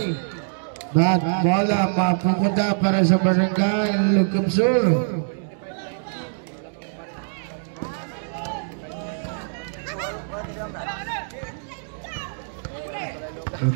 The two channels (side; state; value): left; silent; digital silence